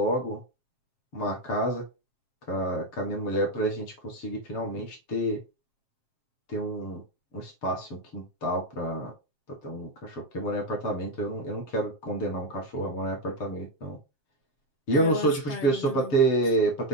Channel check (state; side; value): late; right; 7.5 ms